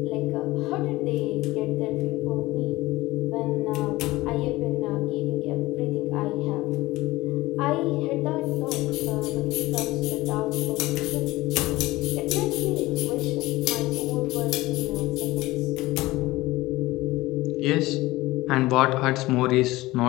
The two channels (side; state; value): right; quieter; 19.0 dB